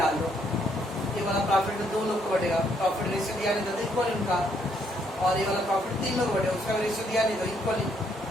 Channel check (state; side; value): normal; both; correlation 0.71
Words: डाल दो। ये वाला प्रॉफिट तो 2 लोग को बढ़ेगा, प्रॉफिट रेशियो दिया नहीं था तो इक्वल उनका, और ये वाला प्रॉफिट 3 लोग बढ़ेगा, उसका रेशियो दिया नहीं तो इक्वली,